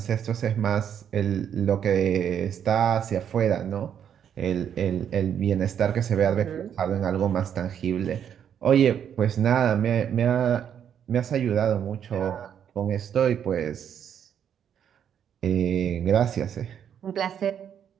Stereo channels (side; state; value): left; quieter; 8.8 dB